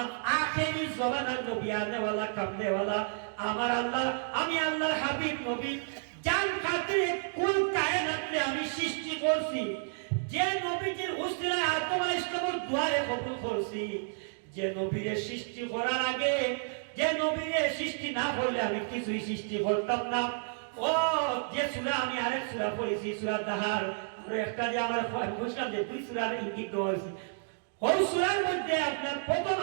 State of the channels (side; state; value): left; silent; digital silence